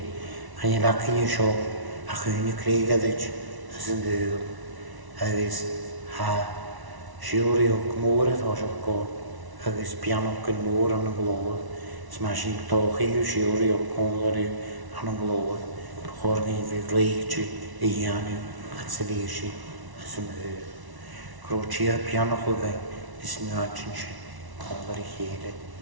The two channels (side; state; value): left; late; 1.0 ms